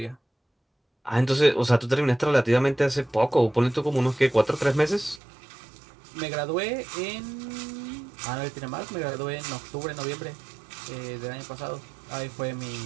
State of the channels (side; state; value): left; drops out; at 5.2 s